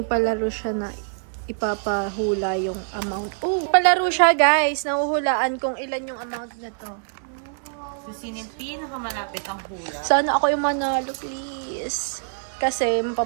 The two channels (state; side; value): silent; left; 57 dB below the other